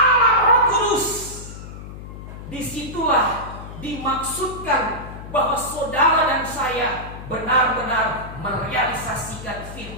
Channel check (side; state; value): left; noise; hum, 12 dB below the sound